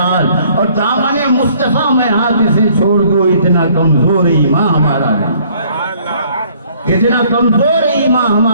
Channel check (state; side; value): inverted; both; correlation -0.60